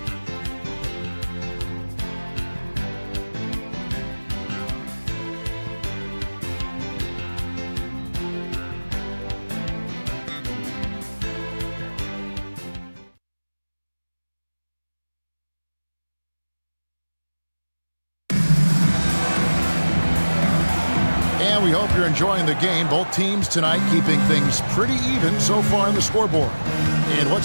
And we hope you're enjoying the game. Both teams tonight keeping things pretty even so far in the scoreboard. And what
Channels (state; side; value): inverted; both; correlation -1.00